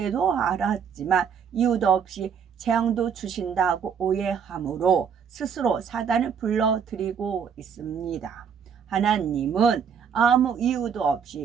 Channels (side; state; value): left; quieter; 7.2 dB